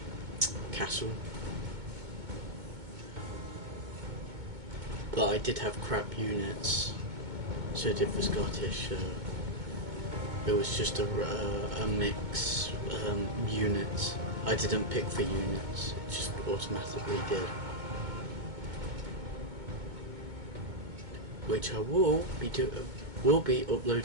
castle, but I did have crap units, so did the Scottish. It was just a mix units. I didn't pick the units; it just automatically did. Which I will be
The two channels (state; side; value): late; left; 2.2 ms